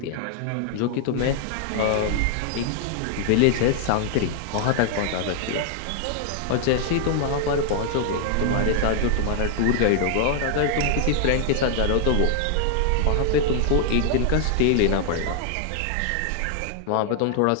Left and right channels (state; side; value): different; both; correlation 0.00